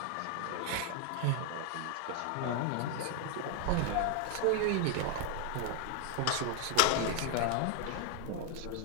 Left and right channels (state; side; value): different; both; correlation 0.00